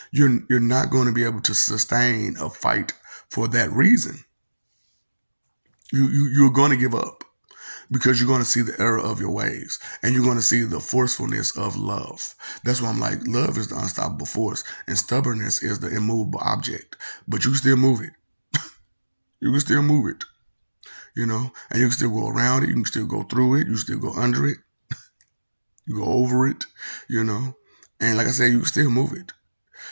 You're not going to be able to sustain a fight for that reason. You're going to give up, because you're going to see the error of your ways, and you're going to see the forcefulness of love. That's why I'm like, love is the unstoppable force, and stubbornness is the immovable object. But you can still move it. You can still move it, you know, and you can still go around it. You can still go through it. You can still go under it. You go over it, you know, and like I said, you can still move it,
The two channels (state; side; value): inverted; both; correlation -1.00